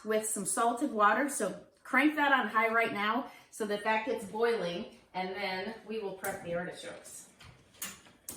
with some salted water. So crank that on high right now so that that gets boiling, and then we will prep the artichokes.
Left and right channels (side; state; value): both; identical; correlation 1.00